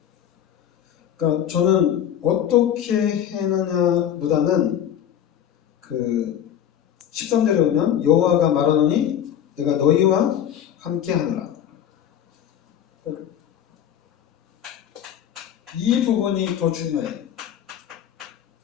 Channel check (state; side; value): quieter; right; 9.9 dB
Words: 그러니까 저는 어떻게 해느냐보다는 그 13절에 보면 여호와가 말하노니 내가 너희와 함께 하노라. 이 부분이 더 중요해요.